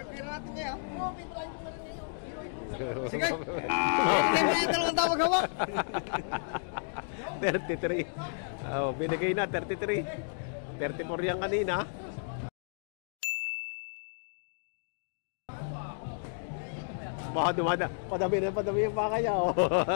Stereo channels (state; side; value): silent; right; digital silence